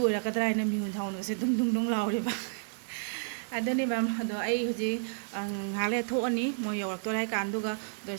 ओइराकद्राइना मिहुन थाउन से दुंग दुंग दुंग लावरेबा अदनी मैम अदो आई हुजी हाले थोअनी मो यवरक्तोराय कांदुगा दो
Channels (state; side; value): silent; left; 55 dB below the other